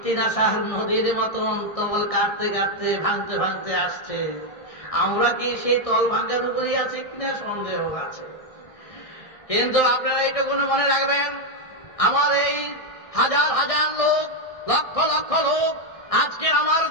নদীর মতন তল কাটতে কাটতে ভাঙতে ভাঙতে আসছে। আমরা কি সেই তল ভাঙার উপরেই আছে কিনা সন্দেহ আছে। কিন্তু আপনারা এইটুকু মনে রাখবেন, আমার এই হাজার হাজার লোক, লক্ষ লক্ষ লোক, আজকে আমার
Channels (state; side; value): late; right; 1.6 ms